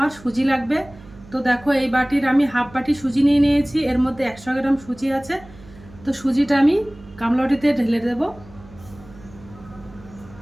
সুজি লাগবে। তো দেখো এই বাটির আমি হাফ বাটি সুজি নিয়ে নিয়েছি, এর মধ্যে 100 গ্রাম সুজি আছে। তো সুজিটা আমি গামলা বাটিতে ঢেলে দেব।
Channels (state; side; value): noise; right; hum, 21 dB below the sound